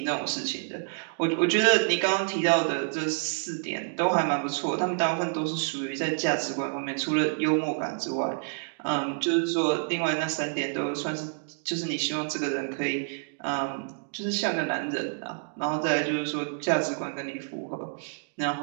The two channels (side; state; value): left; silent; digital silence